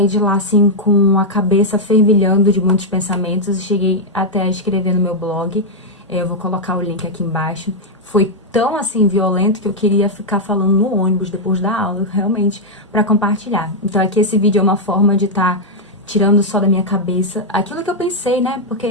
de lá assim com a cabeça fervilhando de muitos pensamentos e cheguei até a escrever no meu blog. Eu vou colocar o link aqui embaixo. Foi tão assim violento que eu queria ficar falando no ônibus depois da aula, realmente, para compartilhar. Então aqui esse vídeo é uma forma de estar tirando só da minha cabeça aquilo que eu pensei, né?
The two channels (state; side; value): normal; both; correlation -0.02